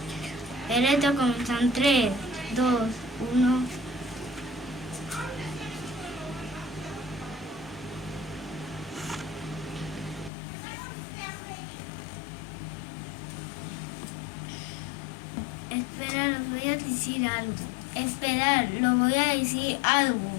El reto comienza en 3, 2, 1. Espera, los voy a decir algo. Esperar, lo voy a decir algo.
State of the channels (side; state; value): right; drops out; at 10.3 s